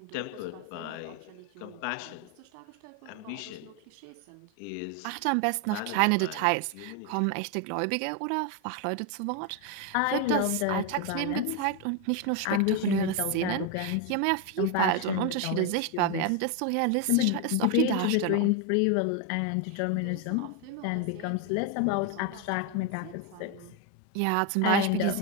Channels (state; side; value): different; both; correlation 0.01